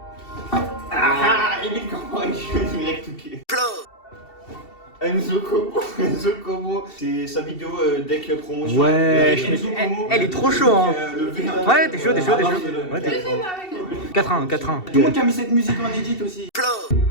Ah, il est comment il joue direct ok. Enzo Como, c'est sa vidéo deck promotion. Ouais, Enzo Como, elle est trop chaud, hein. le V1. Ouais, t'es chaud. Ouais, t'es chaud. 4-1. Tout le monde qui a mis cette musique en edit aussi.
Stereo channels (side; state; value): right; late; 2.7 ms